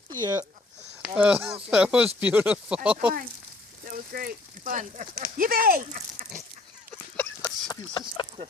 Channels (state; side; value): quieter; right; 3.1 dB